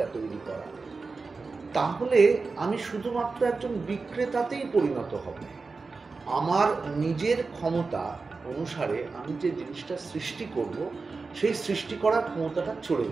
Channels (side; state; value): left; quieter; 4.2 dB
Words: তৈরি করা, তাহলে আমি শুধুমাত্র একজন বিক্রেতাতেই পরিণত হব। আমার নিজের ক্ষমতা অনুসারে আমি যে জিনিসটা সৃষ্টি করব, সেই সৃষ্টি করার ক্ষমতাটা চলে